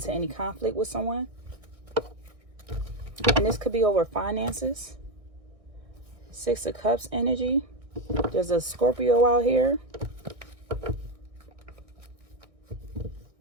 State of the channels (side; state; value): left; late; 1.6 ms